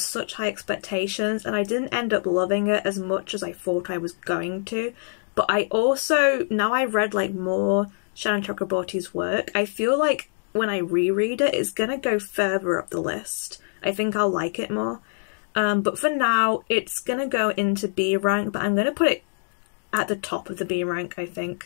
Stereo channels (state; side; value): silent; right; digital silence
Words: high expectations and I didn't end up loving it as much as I thought I was going to. But I also, now I've read like more Shannon Chakraborty's work, I feel like when I reread it, it's gonna go further up the list. I think I'll like it more. But for now, it's gonna go into B rank, but I'm gonna put it at the top of the B rank, I